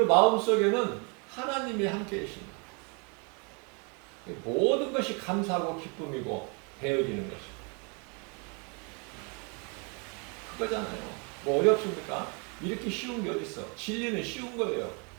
마음속에는 하나님이 함께 계십니다. 모든 것이 감사하고 기쁨이고 되어지는 것이고 그거잖아요. 뭐 어렵습니까? 이렇게 쉬운 게 어디 있어? 진리는 쉬운 거예요.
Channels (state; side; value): quieter; left; 34.7 dB